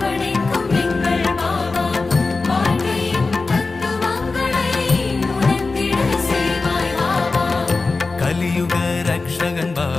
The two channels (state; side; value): quieter; right; 3.8 dB